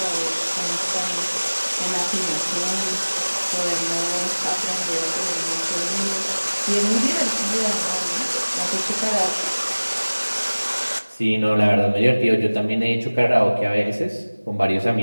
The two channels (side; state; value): both; inverted; correlation -1.00